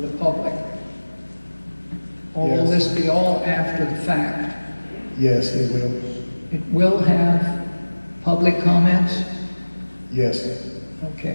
public? Or will Yes. this be all after the fact? Yes, it will. It will have public comments? Yes.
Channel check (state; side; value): inverted; both; correlation -1.00